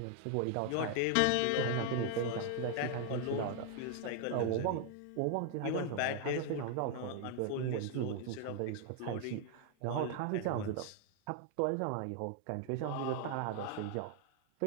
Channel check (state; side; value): different; both; correlation 0.00